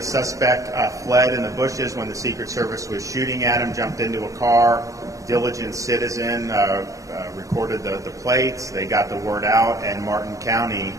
suspect fled in the bushes when the Secret Service was shooting at him, jumped into a car. Diligent citizen recorded the plates. They got the word out, and Martin County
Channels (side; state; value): left; late; 0.16 ms